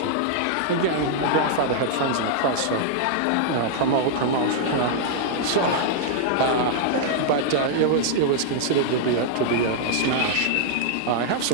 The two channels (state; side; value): different; both; correlation -0.01